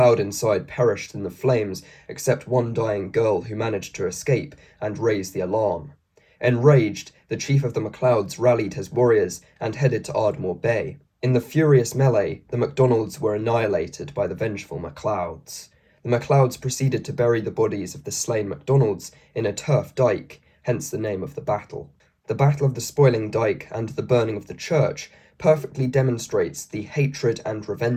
inside perished in the flames, except one dying girl who managed to escape and raise the alarm. Enraged, the chief of the MacLeods rallied his warriors and headed to Ardmore Bay. In the furious melee, the MacDonalds were annihilated by the vengeful MacLeods. The MacLeods proceeded to bury the bodies of the slain MacDonalds in a turf dyke, hence the name of the battle. The Battle of the Spoiling Dyke and the burning of the church perfectly demonstrates the hatred and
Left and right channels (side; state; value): both; identical; correlation 1.00